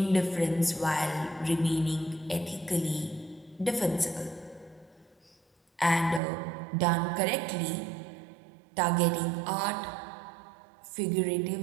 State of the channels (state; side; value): drops out; left; at 6.2 s